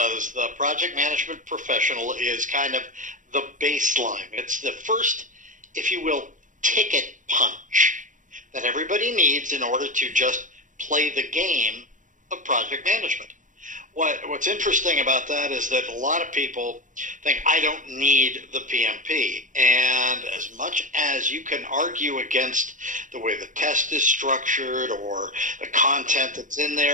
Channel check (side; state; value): left; late; 0.37 ms